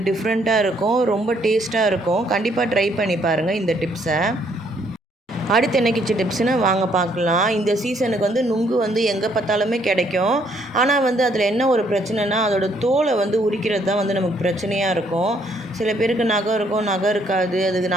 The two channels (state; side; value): normal; both; correlation 0.68